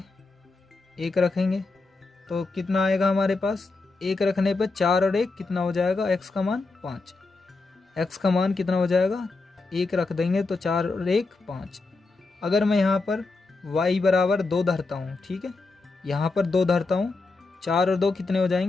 1 रखेंगे तो कितना आएगा हमारे पास? 1 रखने पर 4 और 1 कितना हो जाएगा? x का मान 5। x का मान कितना हो जाएगा? 1 रख देंगे तो 4 और 1 5। अगर मैं यहाँ पर y बराबर 2 धरता हूँ, ठीक है, यहाँ पर 2 धरता हूँ, 4 और 2 कितने हो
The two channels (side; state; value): right; quieter; 3.7 dB